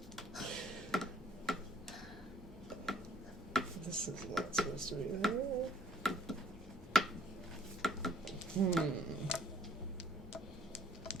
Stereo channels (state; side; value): normal; both; correlation 0.58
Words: This is not supposed to be there.